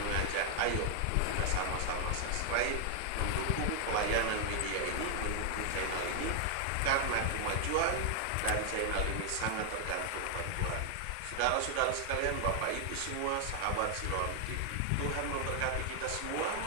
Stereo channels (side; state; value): both; different; correlation 0.00